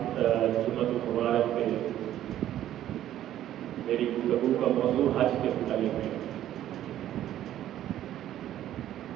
المبارک میں میری گفتگو کا موضوع حج کے متعلق ہے۔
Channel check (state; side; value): quieter; left; 12.3 dB